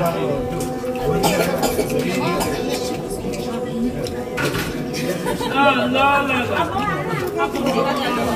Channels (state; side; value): identical; both; correlation 1.00